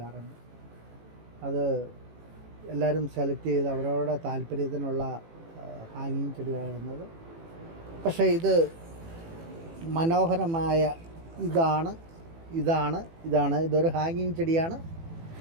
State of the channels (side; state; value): left; late; 18 ms